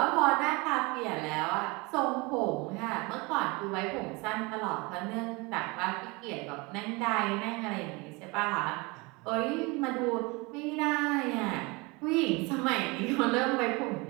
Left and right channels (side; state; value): left; quieter; 26.2 dB